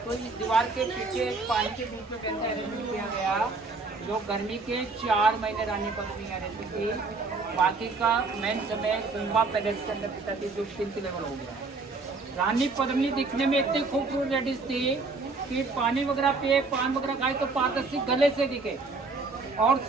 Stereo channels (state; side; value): quieter; left; 3.9 dB